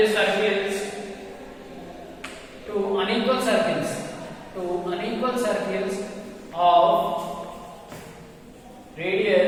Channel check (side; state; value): both; identical; correlation 1.00